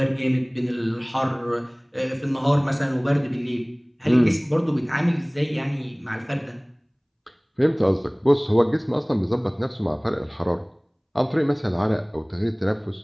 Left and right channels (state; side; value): identical; both; correlation 1.00